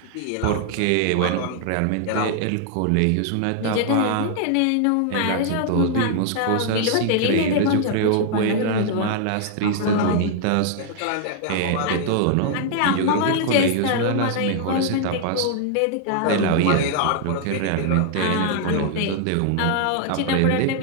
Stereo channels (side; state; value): both; different; correlation 0.00